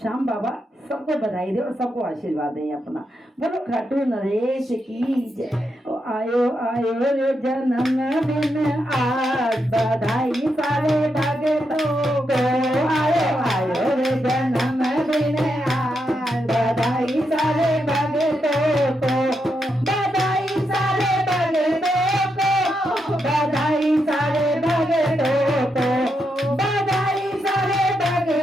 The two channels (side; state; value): both; normal; correlation 0.83